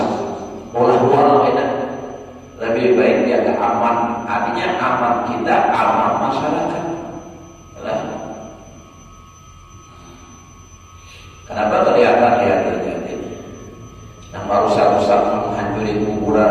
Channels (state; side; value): identical; both; correlation 1.00